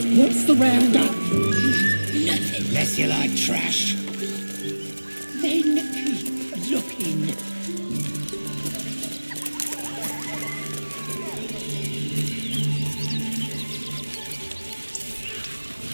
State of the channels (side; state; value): both; inverted; correlation -1.00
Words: What's the roundup? Nothing. Unless you like trash. Then keep looking.